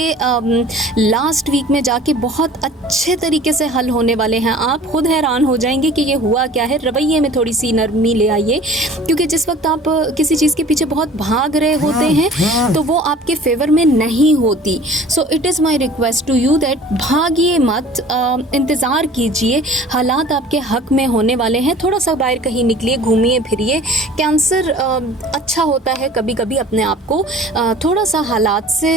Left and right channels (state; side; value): normal; both; correlation 0.46